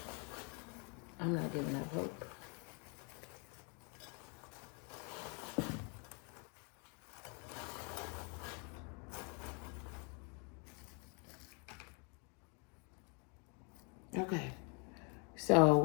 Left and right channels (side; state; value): right; quieter; 35.4 dB